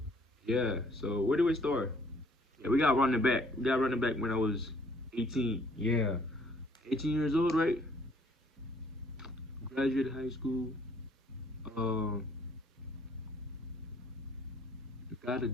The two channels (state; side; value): normal; both; correlation 0.61